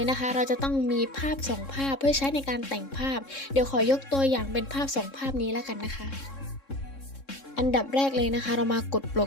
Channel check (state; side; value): late; right; 3.7 ms